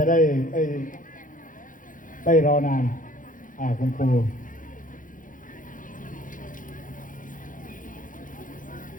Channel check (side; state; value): right; late; 0.39 ms